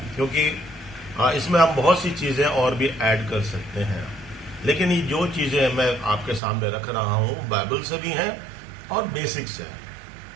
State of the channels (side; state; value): left; drops out; at 6.4 s